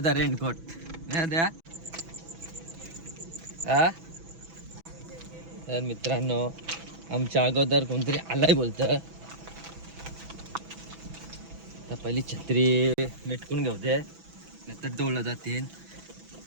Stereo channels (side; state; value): left; late; 6.1 ms